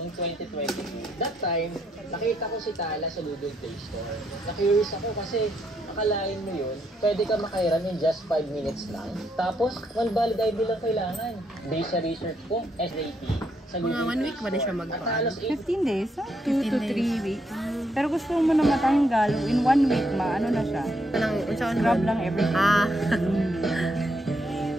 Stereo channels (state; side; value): normal; both; correlation 0.76